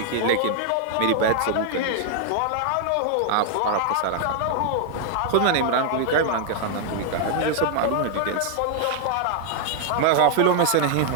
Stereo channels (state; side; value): different; both; correlation 0.00